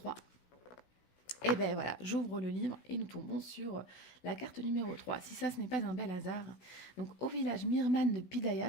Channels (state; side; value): late; right; 16 ms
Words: Et ben voilà, j'ouvre le livre et nous tombons sur la carte numéro 3. Si ça, ce n'est pas un bel hasard. Donc, au village Mirman de Pidaya